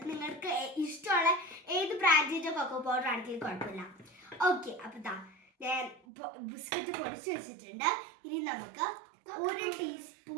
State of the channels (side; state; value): left; drops out; at 6.0 s